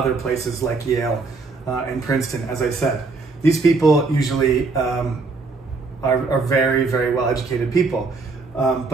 places like Yale and Princeton, as I said. These people usually are very, very well-educated people.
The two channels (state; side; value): quieter; left; 4.0 dB